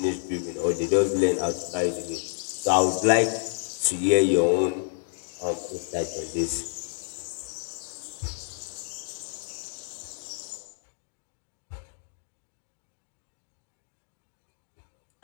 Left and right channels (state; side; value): silent; right; digital silence